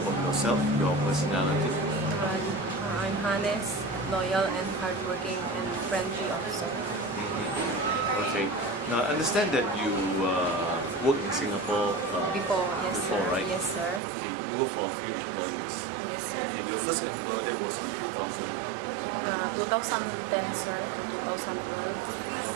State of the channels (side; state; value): left; drops out; at 14.0 s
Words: yourself, your personality? I'm honest, loyal, and hardworking, and friendly also. Okay, now I understand that you work in Singapore Before, yes, before, sir. right? Yes, sir. Okay, you work for a few employers. Yes, sir. Okay, your first employer that was in 2000. 2010, sir, to 2012.